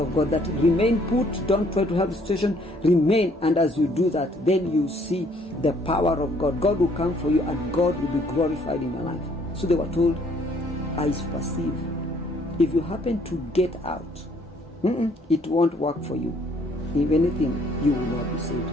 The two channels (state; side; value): normal; both; correlation 0.63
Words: God, that remain put, don't try to help the situation, remain. And as you do that, then you see the power of God. God will come for you and God will be glorified in your life. So they were told, eyes perceive. If you happen to get out, it won't work for you. If anything, you will not be